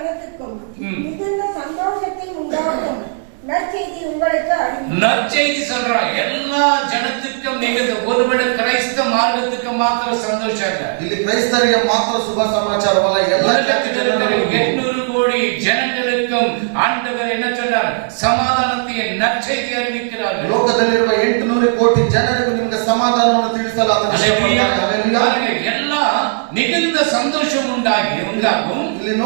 ம். மிகுந்த சந்தோஷத்தை உண்டாகும் நற்செய்தி உங்களுக்கு அறிவிக்கிறேன். நற்செய்தி சொல்றான். எல்லா ஜனத்துக்கும் நிகழ்ந்து ஒருவேளை கிறிஸ்தவ மார்க்கத்துக்கு மாத்திர சந்தோஷம் இல்ல. ಇಲ್ಲಿ ಕ್ರೈಸ್ತರಿಗೆ ಮಾತ್ರ ಶುಭ ಸಮಾಚಾರವಲ್ಲ, ಎಲ್ಲ உலகத்தில் இருக்கிற 800 கோடி ஜனங்களுக்கும் ஆண்டவர் என்ன சொல்றார்? சமாதானத்தை நற்செய்தி அறிவிக்கிறார்கள். ಲೋಕದಲ್ಲಿರುವ 800 ಕೋಟಿ ಜನರಿಗೂ ನಿಮಗೆ ಸಮಾಧಾನವನ್ನು ತಿಳಿಸಲು ಆತನು அல்லேலூயா. ಇಷ್ಟಪಡ್ತಾನೆ. அல்லೇಲೂಯಾ. பாருங்க, எல்லாம் மிகுந்த சந்தோஷம் உண்டாகும். ಇಲ್ಲಿ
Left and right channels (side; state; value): left; silent; digital silence